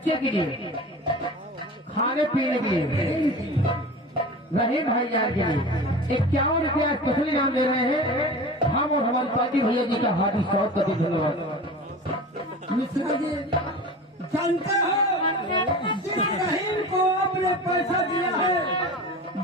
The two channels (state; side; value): normal; both; correlation 0.34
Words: के लिए खाने पीने के लिए रहे भाईजान के लिए 51 रुपया स्पेशल इनाम दे रहे हैं। हम और हमारी पार्टी भैया जी का हार्दिक स्वागत करते हैं। धन्यवाद। मिश्रा जी जानते हो जिस रहीम को आपने पैसा दिया है